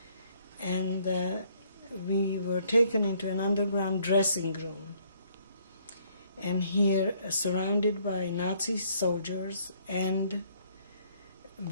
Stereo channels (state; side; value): inverted; both; correlation -0.65